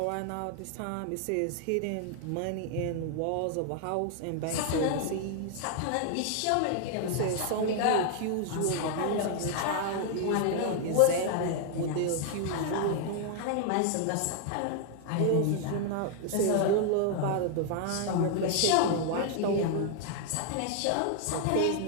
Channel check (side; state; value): both; different; correlation 0.00